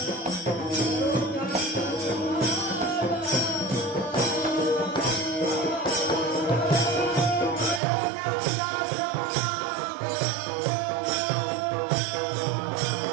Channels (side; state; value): left; drops out; at 7.8 s